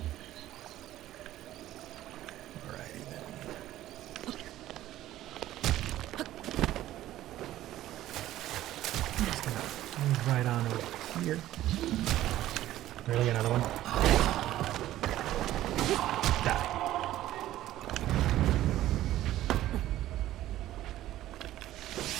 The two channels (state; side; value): quieter; left; 14.1 dB